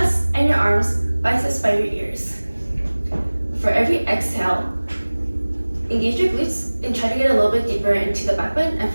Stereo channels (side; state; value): both; inverted; correlation -1.00